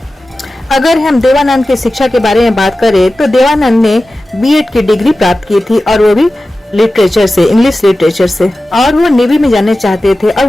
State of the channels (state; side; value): normal; both; correlation 0.95